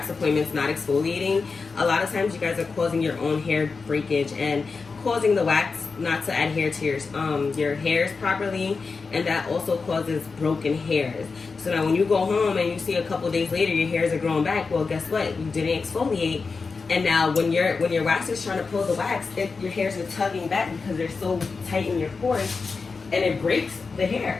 appointments not exfoliating, a lot of times you guys are causing your own hair breakage and causing the wax not to adhere to your hairs properly, and that also causes broken hairs. So now when you go home and you see a couple days later your hairs are growing back, well, guess what? You didn't exfoliate. And now when your wax is trying to pull the wax, your hairs are tugging back because they're so tight in your pores, and it breaks the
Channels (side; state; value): right; quieter; 4.6 dB